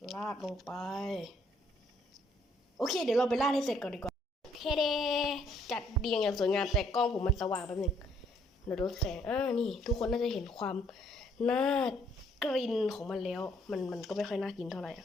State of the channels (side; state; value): both; normal; correlation 0.67